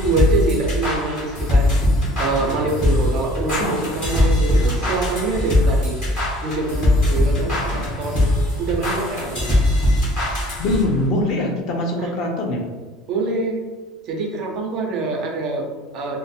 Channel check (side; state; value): both; normal; correlation 0.54